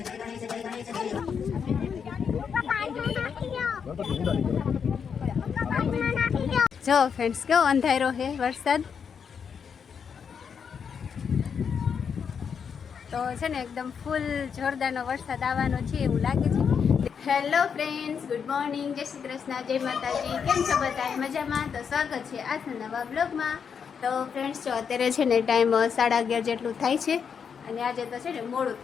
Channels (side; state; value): right; quieter; 6.8 dB